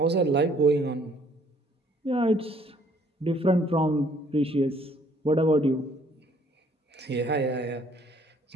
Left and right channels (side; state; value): both; normal; correlation 0.62